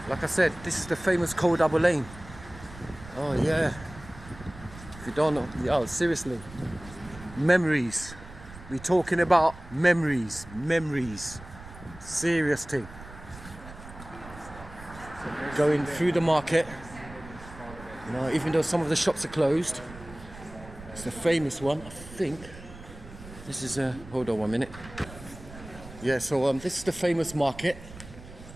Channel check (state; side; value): noise; right; rumble, 16 dB below the sound